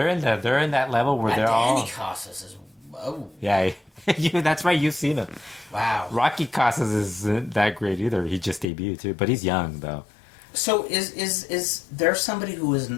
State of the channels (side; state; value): right; drops out; at 8.7 s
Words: in that level where they're all... Danny Casas is... Oh. Yeah, that's right, you've seen him. Wow. Rocky Casas isn't that great either. He just debuted too, but he's young though. So is there somebody who